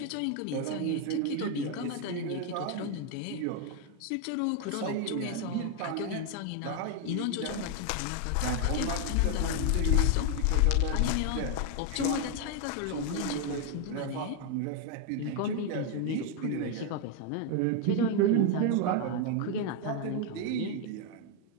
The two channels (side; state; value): both; different; correlation 0.01